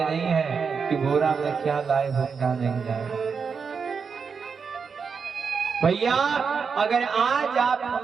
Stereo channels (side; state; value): left; quieter; 5.7 dB